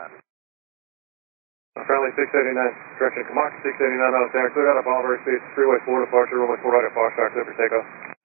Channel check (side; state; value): left; quieter; 37.2 dB